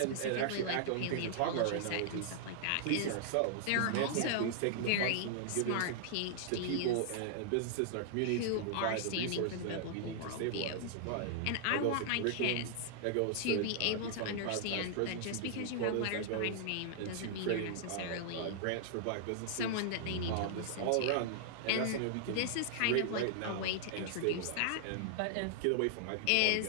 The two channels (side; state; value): both; different; correlation -0.01